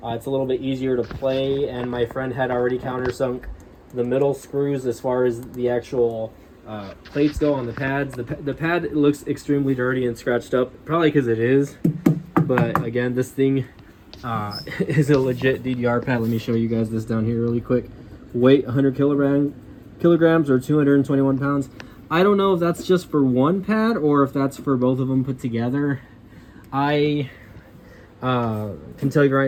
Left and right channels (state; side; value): identical; both; correlation 1.00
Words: it's a little bit easier to play, and my friend had already countersunk the middle screws as far as the actual plates go on the pads. The pad looks extremely dirty and scratched up, probably because it is, but again, this thing is a legit DDR pad. Let me show you guys this down here really quick. Weight 100 kilograms or 221 pounds. I don't know if that's just for one pad or if that's for both of them put together. I can tell you